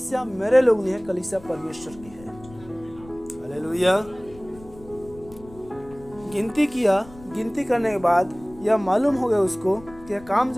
मेरे लोग नहीं है, कलीसिया परमेश्वर की है। हालेलुया। गिनती किया, गिनती करने के बाद यह मालूम हो गया उसको कि यह काम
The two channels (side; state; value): left; noise; rumble, 21 dB below the sound